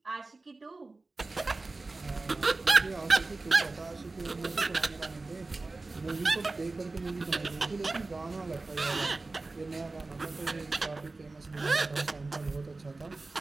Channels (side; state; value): left; quieter; 3.4 dB